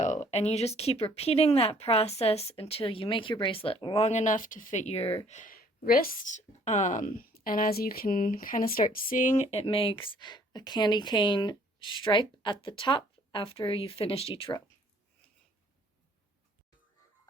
and you just keep repeating that process until you make your bracelet long enough to fit your wrist. And as you can kind of start seeing, it makes a candy cane stripe at the top after you've finished each row.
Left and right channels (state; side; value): normal; both; correlation 0.59